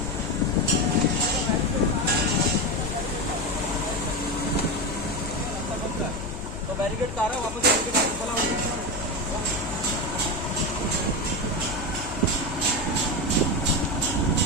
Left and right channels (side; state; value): left; noise; hum, 10 dB below the sound